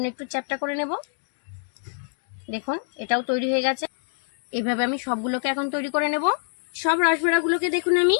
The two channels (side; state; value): right; silent; digital silence